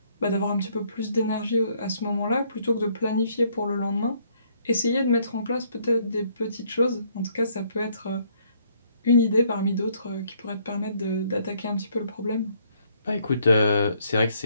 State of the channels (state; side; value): inverted; both; correlation -0.67